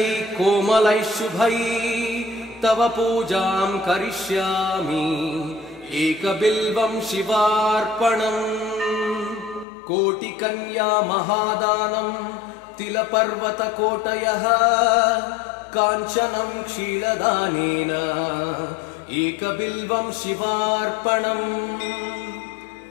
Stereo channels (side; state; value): right; drops out; at 9.7 s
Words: कोमलै शुभै तव पूजां करिष्यामि एकबिल्वं शिवार्पणम् कोटिकन्या महादानम् तिलपर्वतकोटयः काञ्चनं क्षीरदानेन एकबिल्वं शिवार्पणम्